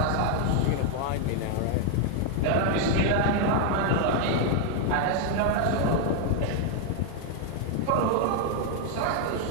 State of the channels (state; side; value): different; both; correlation 0.00